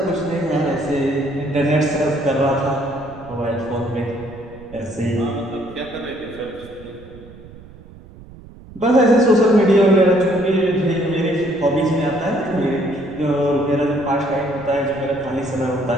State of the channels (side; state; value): right; noise; rumble, 19 dB below the sound